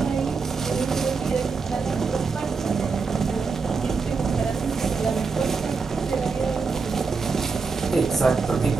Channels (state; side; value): quieter; left; 4.8 dB